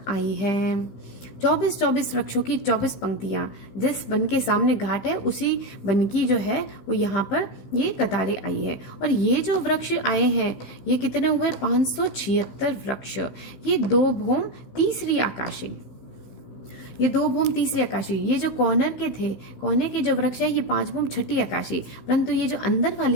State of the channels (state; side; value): late; right; 16 ms